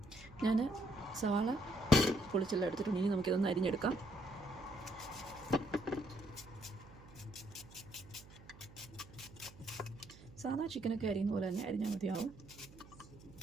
ഞാൻ സവാള പൊളിച്ചെല്ലാം എടുത്തിട്ടുണ്ട്. ഇനി നമുക്കിതൊന്ന് അരിഞ്ഞെടുക്കാം. സാധാ ചിക്കനൊക്കെ അരിയുന്ന പോലെ തന്നെ അരിഞ്ഞാൽ മതിയാവും.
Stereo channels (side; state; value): right; noise; hum, 20 dB below the sound